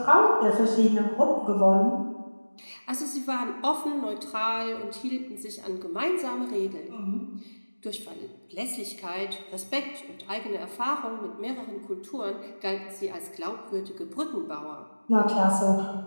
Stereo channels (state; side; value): inverted; both; correlation -1.00